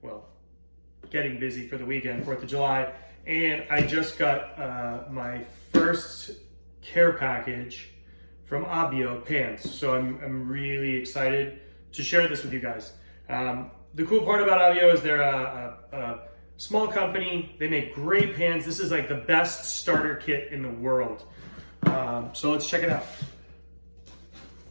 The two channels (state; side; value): inverted; both; correlation -1.00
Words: Well, getting busy for the weekend, 4th of July. And I just got my first care package from Abbio pants. So I'm really excited to share this with you guys. The cool part about Abbio is they're a small company. They make great pants. This is like the best starter kit in the world. So let's check it out.